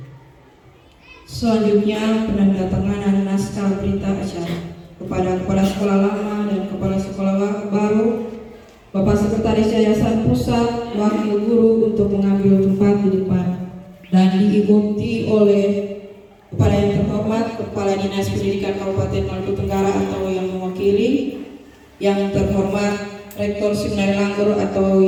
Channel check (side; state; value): both; identical; correlation 1.00